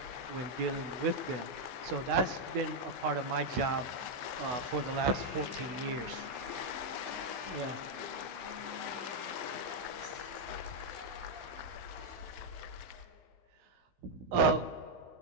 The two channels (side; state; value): left; late; 16 ms